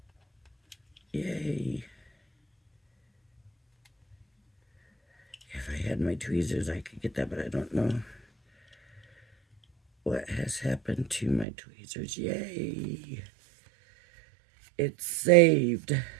Yay. If I had my tweezers, I could get that, but I don't know what has happened to my tweezers. Yay. It's saved.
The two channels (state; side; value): drops out; left; at 11.5 s